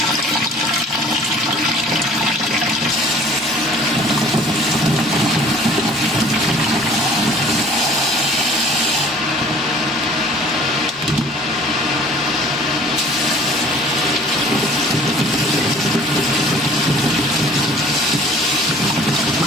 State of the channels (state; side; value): normal; both; correlation 0.51